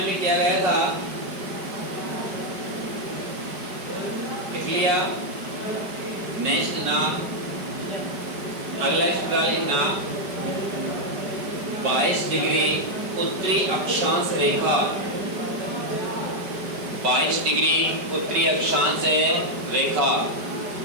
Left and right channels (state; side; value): late; left; 5.1 ms